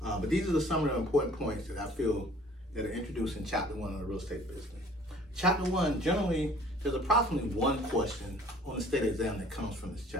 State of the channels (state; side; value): normal; both; correlation 0.53